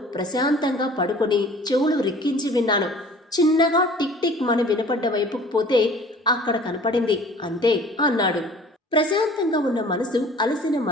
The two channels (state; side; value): normal; both; correlation 0.48